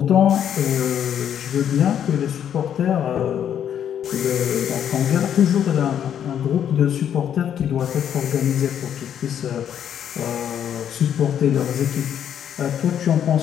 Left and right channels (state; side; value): quieter; right; 9.3 dB